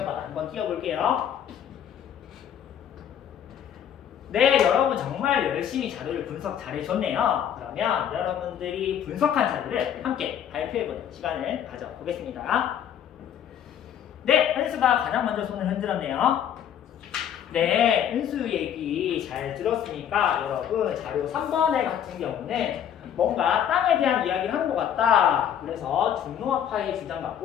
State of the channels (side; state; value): right; quieter; 9.4 dB